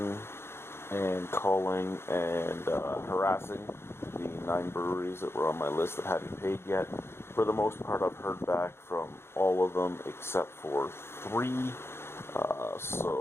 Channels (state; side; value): late; right; 0.12 ms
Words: and calling and harassing the 9 breweries that were on my list that hadn't paid yet. For the most part, I've heard back from all of them except for 3.